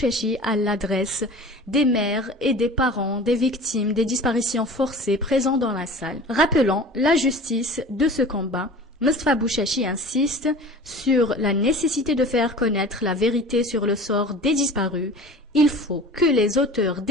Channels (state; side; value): normal; both; correlation 0.40